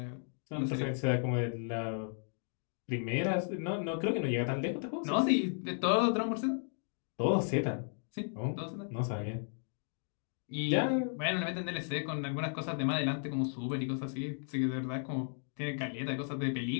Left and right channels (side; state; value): right; silent; 55 dB below the other